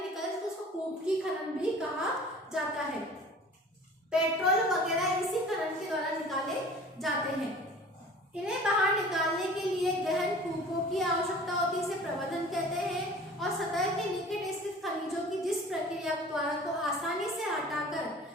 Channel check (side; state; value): both; normal; correlation 0.44